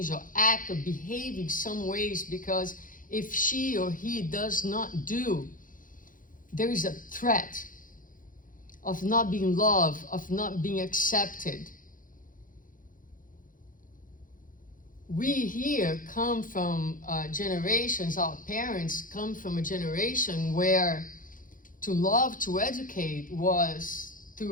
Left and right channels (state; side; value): late; right; 0.39 ms